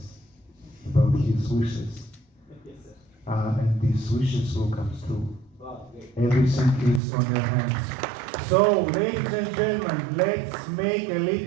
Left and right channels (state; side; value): drops out; left; at 7.0 s